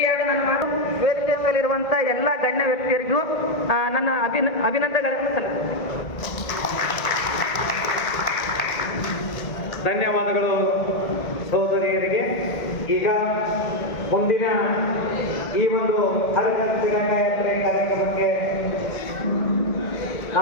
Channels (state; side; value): late; right; 1.9 ms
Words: ಎರಡು ನನ್ನ ಮಾತು ವೇದಿಕೆ ಮೇಲಿರುವಂತ ಎಲ್ಲ ಗಣ್ಯ ವ್ಯಕ್ತಿಯರಿಗೂ ನನ್ನ ಅಭಿನಂದನೆಗಳನ್ನು ಸಲ್ಲಿಸುತ್ತೇನೆ. ಧನ್ಯವಾದಗಳು ಸಹೋದರಿಯರಿಗೆ. ಈಗ ಮುಂದಿನ ಈ ಒಂದು ಹರಿಜನ ತಿರಂಗ ಯಾತ್ರೆ ಕಾರ್ಯಕ್ರಮಕ್ಕೆ